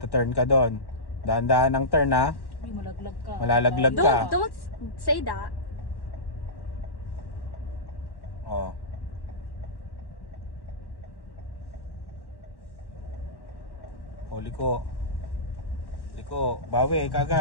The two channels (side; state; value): right; late; 1.1 ms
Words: turn ka doon. Dahan-dahan ng turn ha. Uy, malaglag ka. Malalaglag ka. Don't say that. Oh. Oh, liko. Liko, bawi